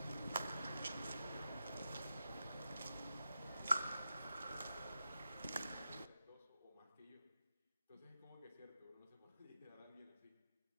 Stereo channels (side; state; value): both; inverted; correlation -0.89